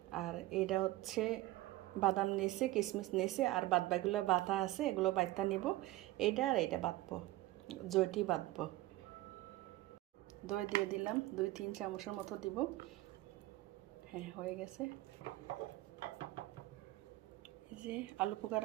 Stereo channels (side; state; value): left; quieter; 17.6 dB